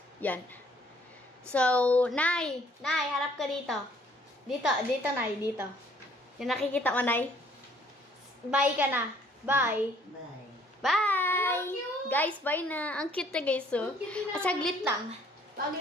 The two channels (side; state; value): both; normal; correlation 0.61